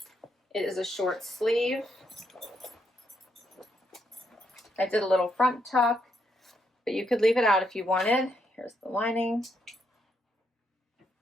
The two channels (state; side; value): normal; both; correlation 0.78